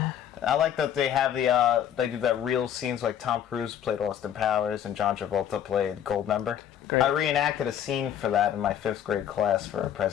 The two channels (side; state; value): right; quieter; 9.8 dB